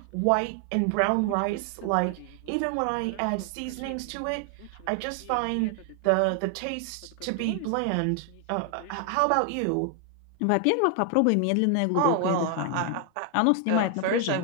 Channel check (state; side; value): different; both; correlation 0.00